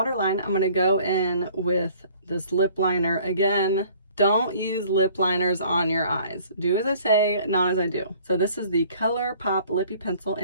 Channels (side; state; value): both; inverted; correlation -0.54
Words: I'm gonna go in with this lip liner again. Don't use lip liners on your eyes. Do as I say, not as I do. So this is the ColourPop Lippy Pencil